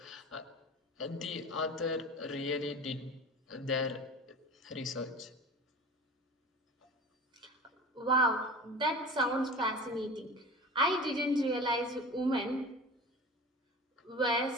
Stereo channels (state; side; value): normal; both; correlation 0.36